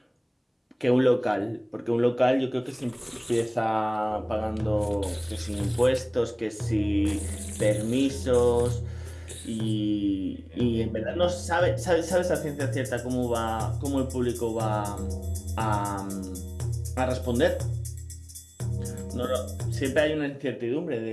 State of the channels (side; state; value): both; identical; correlation 1.00